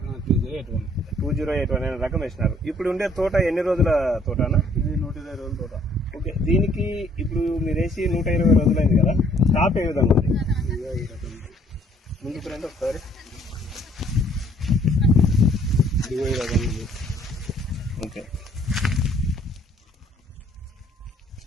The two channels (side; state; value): both; normal; correlation 0.62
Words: 2081 అనే రకం వేసినారు. ఇప్పుడు ఉండే తోట ఎన్ని రోజుల తోటనా? ఇది 120 రోజుల తోట. ఓకే, దీనికి ఇప్పుడు మీరు వేసి 120 రోజులైంది కదా, స్టాప్ ఏ విధంగా ఉంది? ముందుకు రండి ఒకసారి. ఓకే,